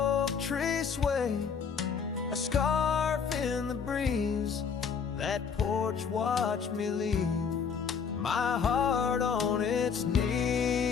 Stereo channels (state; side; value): quieter; right; 6.4 dB